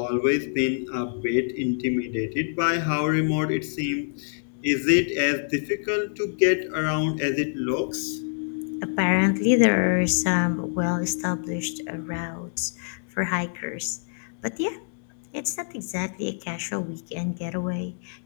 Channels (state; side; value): silent; right; digital silence